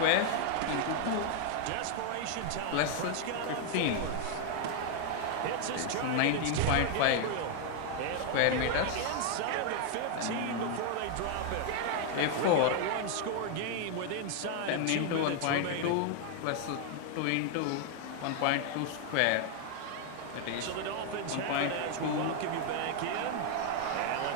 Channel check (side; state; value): both; different; correlation 0.00